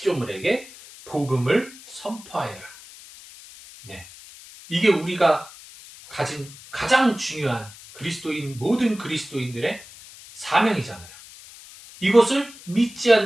복음을 선포하여라. 네, 이게 우리가 가진 가장 중요한 모든 그리스도인들의 사명이잖아요. 이것을 믿지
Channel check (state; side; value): noise; left; hiss, 19 dB below the sound